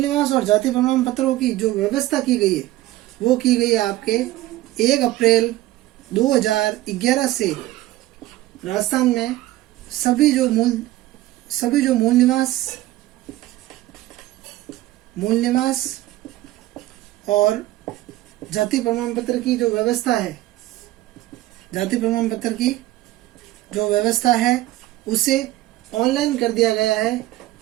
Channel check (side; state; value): left; quieter; 16.2 dB